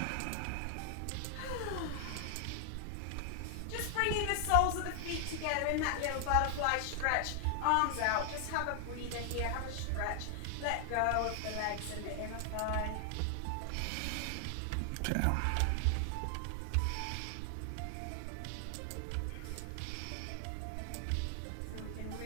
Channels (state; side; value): different; both; correlation 0.00